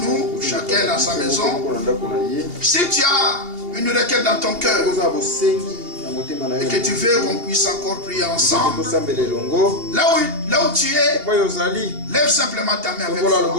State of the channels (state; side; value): late; left; 2.8 ms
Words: chacun dans sa maison. Si tu as une requête dans ton cœur et que tu veux qu'on puisse encore prier ensemble, là où tu es, lève simplement ta main avec foi.